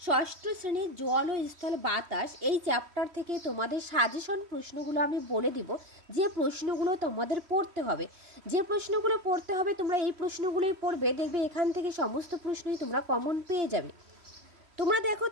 ষষ্ঠ শ্রেণীর জল ও স্থল বাতাস এই চ্যাপ্টার থেকে তোমাদের সাজেশন প্রশ্নগুলো আমি বলে দিব। যে প্রশ্নগুলো তোমাদের পড়তে হবে, তোমরা এই প্রশ্নগুলোই পড়বে, দেখবে এখান থেকে সমস্ত প্রশ্নই তোমরা কমন পেয়ে যাবে। তোমরা দেখো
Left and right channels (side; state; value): left; late; 3.1 ms